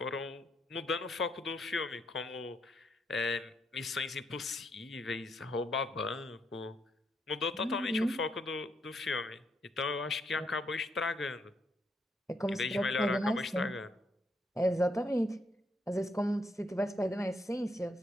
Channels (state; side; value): normal; both; correlation 0.76